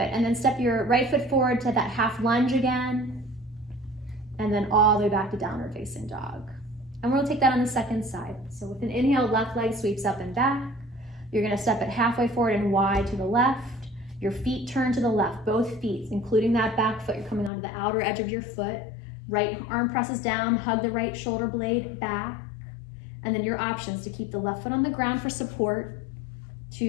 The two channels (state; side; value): drops out; right; at 17.5 s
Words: and then step your right foot forward to that half lunge again, and then all the way back to downward facing dog. And we'll take that on the second side. So with an inhale, left leg sweeps up and back. You're gonna step it halfway forward and wide to the left. Your feet turn to the left, both feet, including that back foot. You're coming onto the outer edge of your foot. Right arm presses down, hug the right shoulder blade back. And then your options to keep the left foot on the ground for support,